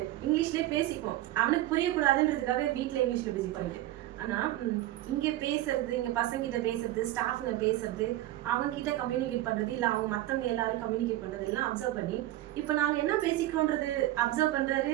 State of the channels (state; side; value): quieter; left; 15.2 dB